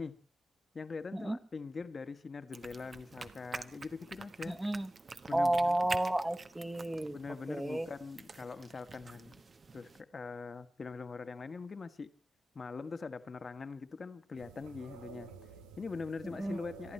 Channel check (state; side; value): normal; both; correlation 0.95